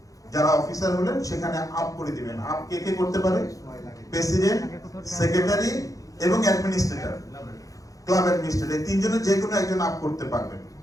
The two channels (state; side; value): late; right; 0.17 ms